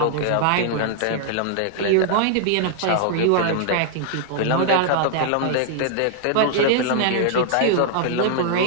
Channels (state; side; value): different; both; correlation -0.01